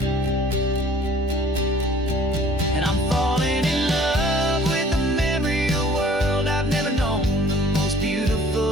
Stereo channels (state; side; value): normal; both; correlation 0.53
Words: And I'm falling in love with the memory of a world I've never known, the most